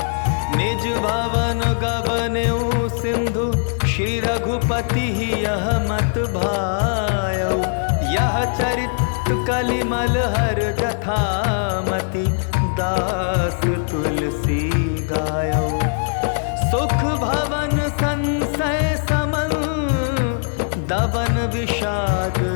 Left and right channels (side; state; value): right; silent; digital silence